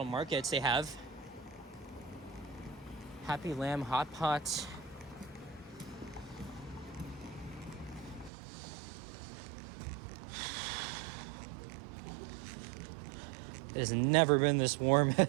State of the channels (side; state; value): left; drops out; at 8.3 s